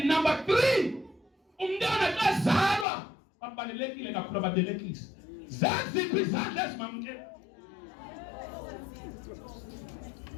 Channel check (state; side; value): drops out; right; at 2.9 s